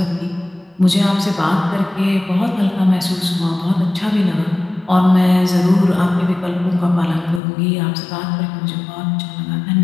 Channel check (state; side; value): drops out; right; at 7.4 s